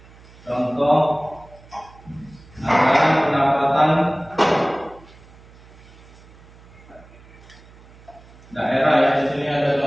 Contoh anggaran pendapatan daerah ya. Di sini ada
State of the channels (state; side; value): noise; right; hum, 23 dB below the sound